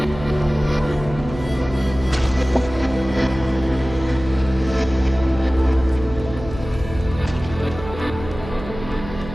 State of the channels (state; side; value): noise; right; hum, 12 dB below the sound